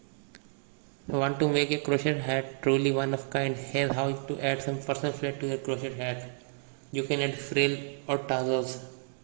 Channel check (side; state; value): left; silent; digital silence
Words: Want to make a crochet hat truly one of kind? Here's how to add some personal flair to your crochet hat. You can add frill or tassels